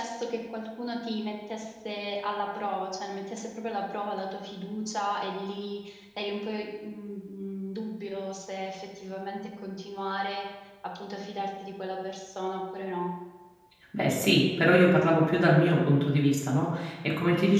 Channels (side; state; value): both; identical; correlation 1.00